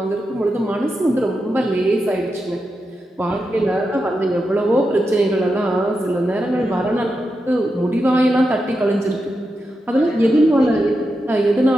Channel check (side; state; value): both; normal; correlation 0.88